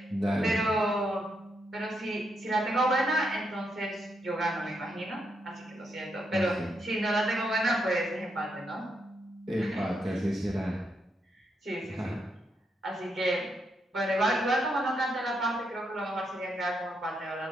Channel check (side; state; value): both; normal; correlation 0.80